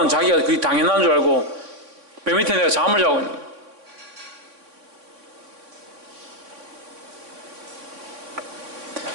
자기가 그게 당연한 줄 알고 배 밑에 내가 잠을 자고 있는 거예요.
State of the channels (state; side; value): late; left; 3.6 ms